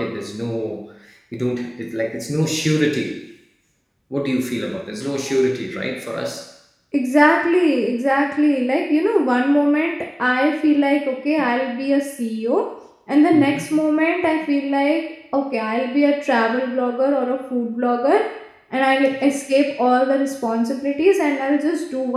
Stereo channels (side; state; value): both; identical; correlation 1.00